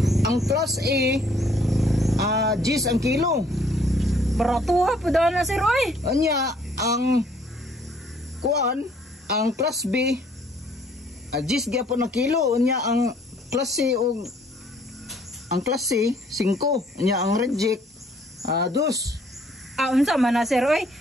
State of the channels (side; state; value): both; normal; correlation 0.62